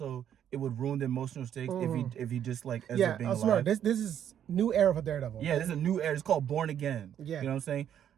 it would ruin the emotional stakes if he just like ends up being alive. This is new era for Daredevil. Yeah, this is a new era. It's called Born Again. Yeah, you know what I'm saying.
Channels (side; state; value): left; quieter; 9.7 dB